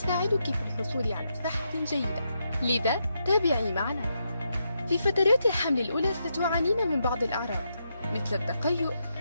في الحصول على صحة جيدة. لذا تابعي معنا. في فترات الحمل الأولى ستعانين من بعض الأعراض مثل التقيؤ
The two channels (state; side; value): inverted; both; correlation -0.82